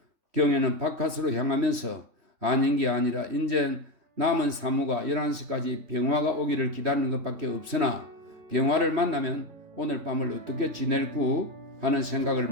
경혜는 바깥으로 향하면서 아닌 게 아니라 이제 남은 사무가 11시까지 병화가 오기를 기다리는 것밖에 없으나 병화를 만나면 오늘 밤을 어떻게 지낼구 하는 생각을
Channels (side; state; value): left; late; 3.1 ms